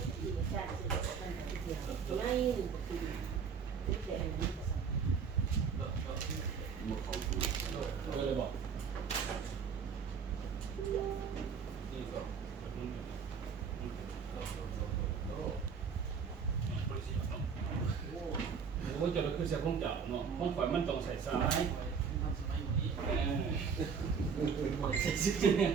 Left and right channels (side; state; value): left; quieter; 6.2 dB